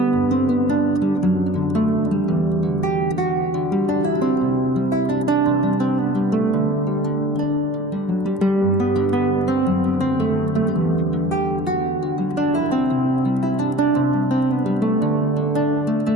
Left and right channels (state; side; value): normal; both; correlation 0.45